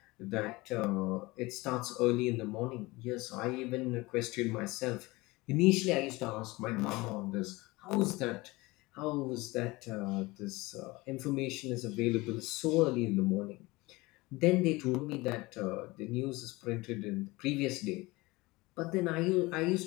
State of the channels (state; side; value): quieter; right; 22.1 dB